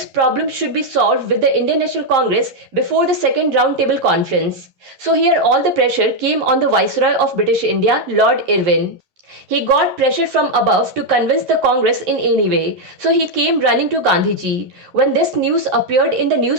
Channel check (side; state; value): left; late; 11 ms